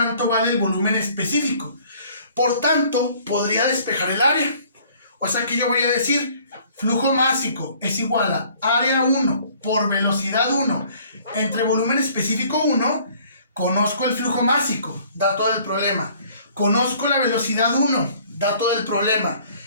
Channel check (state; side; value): inverted; both; correlation -0.56